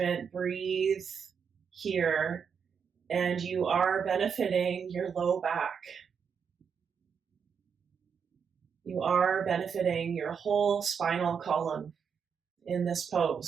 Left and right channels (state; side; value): quieter; left; 6.7 dB